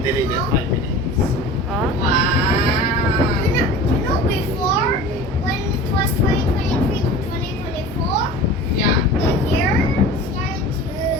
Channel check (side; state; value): both; normal; correlation 0.38